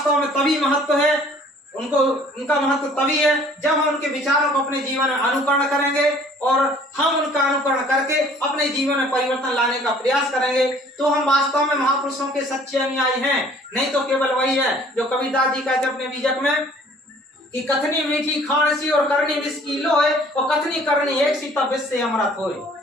में तभी महत्व है, उनका महत्व तभी है जब हम उनके विचारों को अपने जीवन में अनुकरण करेंगे, और हम उनका अनुकरण करके अपने जीवन में परिवर्तन लाने का प्रयास करेंगे, तो हम वास्तव में महापुरुषों के सच्चे अनुयायी हैं। नहीं तो केवल वही है जो कबीरदास जी कहते अपने बीजक में कि कथनी मीठी खान सी और करनी विष की लोए, और कथनी करनी एक सी तब विष से अमृत होए।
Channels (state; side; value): normal; both; correlation 0.54